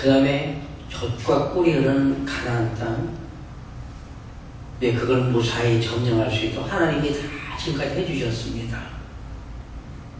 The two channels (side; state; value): both; identical; correlation 1.00